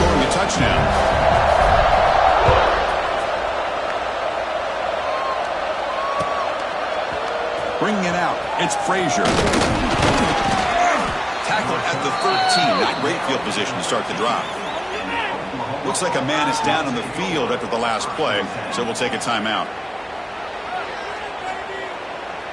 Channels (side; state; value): both; identical; correlation 1.00